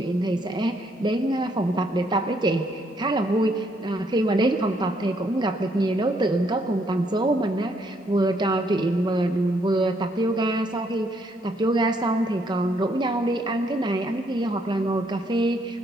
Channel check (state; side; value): normal; both; correlation 0.71